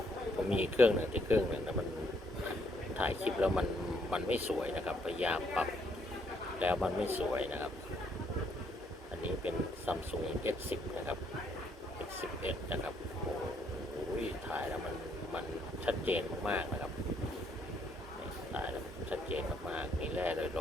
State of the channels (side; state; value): both; normal; correlation 0.70